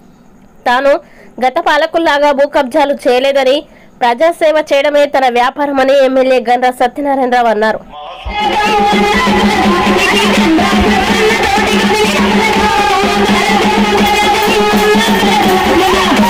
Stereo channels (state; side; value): identical; both; correlation 1.00